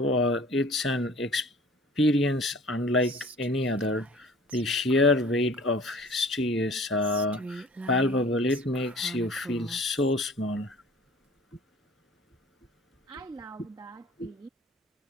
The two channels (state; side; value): normal; both; correlation 0.47